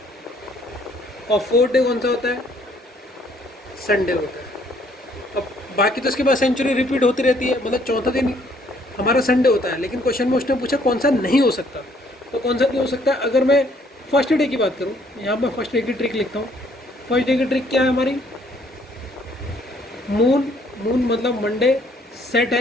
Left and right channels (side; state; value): both; normal; correlation 0.64